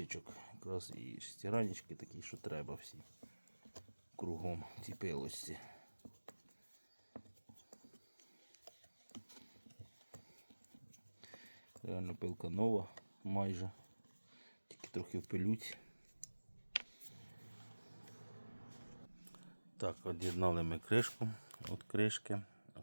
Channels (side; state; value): both; inverted; correlation -1.00